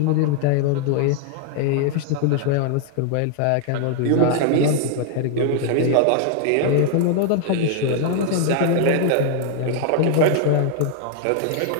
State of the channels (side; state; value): both; different; correlation 0.00